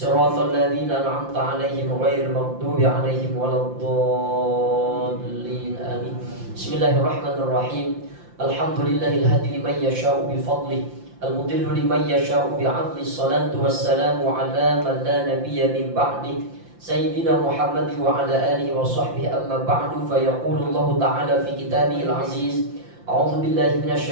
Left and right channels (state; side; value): late; left; 5.8 ms